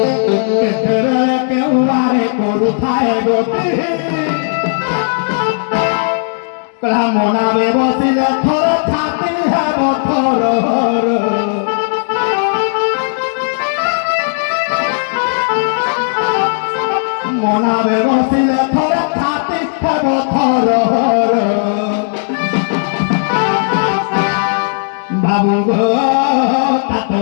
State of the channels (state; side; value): silent; right; digital silence